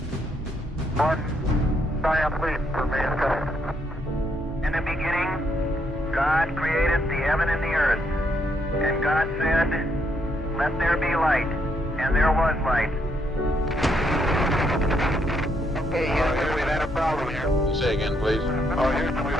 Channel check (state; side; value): normal; both; correlation 0.74